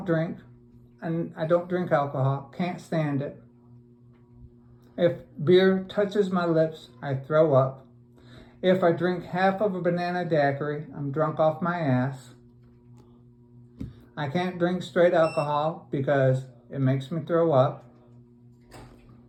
drink, and I don't drink alcohol, can't stand it. If beer touches my lips, I throw up. If I drink half of a banana daiquiri, I'm drunk off my ass. I can't drink straight alcohol because it makes me throw up.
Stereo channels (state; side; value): identical; both; correlation 1.00